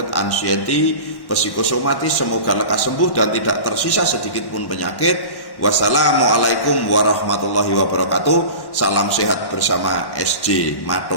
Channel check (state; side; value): late; right; 1.1 ms